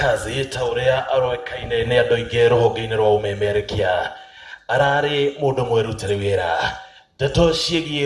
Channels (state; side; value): identical; both; correlation 1.00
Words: ta ũrĩa aroĩkaine nĩ andũ aingĩ rũhonge-inĩ rwa ũmemerekia, ararĩ mũndũ mwĩrutĩre wĩra. Ndeto